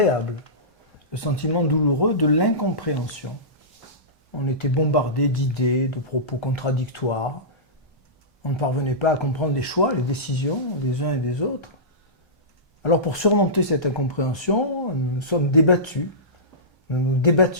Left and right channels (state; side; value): normal; both; correlation -0.19